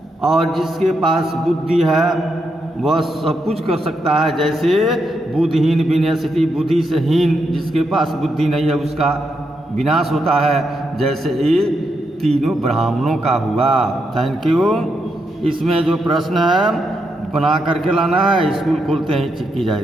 और जिसके पास बुद्धि है वह सब कुछ कर सकता है। जैसे बुद्धिहीन विनश्यति, बुद्धि से हीन जिसके पास बुद्धि नहीं है उसका विनाश होता है, जैसे ये तीनों ब्राह्मणों का हुआ। Thank you. इसमें जो प्रश्न है बना करके लाना है, स्कूल खोलते ही की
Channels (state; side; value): normal; both; correlation 0.82